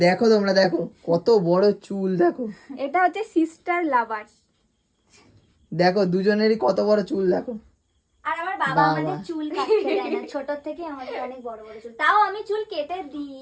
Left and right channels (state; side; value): identical; both; correlation 1.00